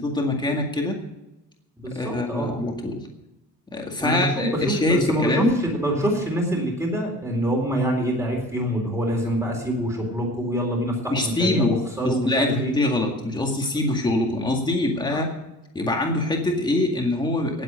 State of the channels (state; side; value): normal; both; correlation 0.44